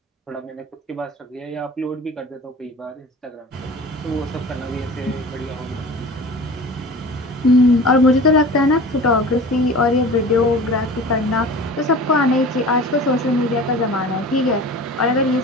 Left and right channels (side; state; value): both; normal; correlation 0.38